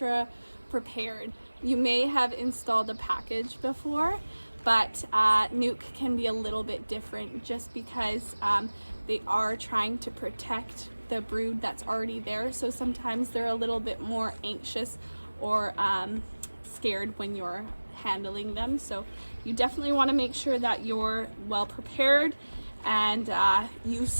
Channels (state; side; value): inverted; both; correlation -1.00